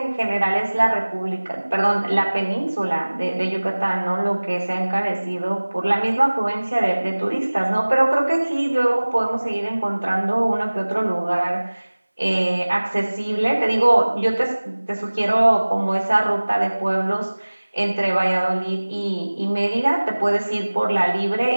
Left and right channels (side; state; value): both; inverted; correlation -1.00